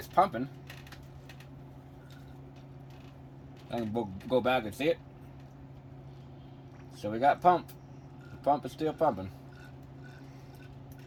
pumping. I can go back and see it. So we got pump. The pump is still pumping.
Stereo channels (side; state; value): both; identical; correlation 1.00